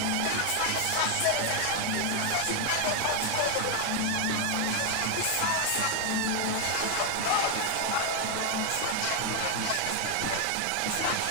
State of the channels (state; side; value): different; both; correlation 0.01